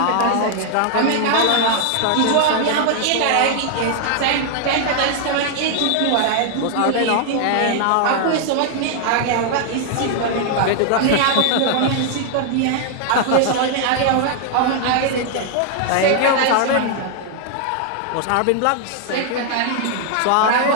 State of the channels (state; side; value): different; both; correlation 0.00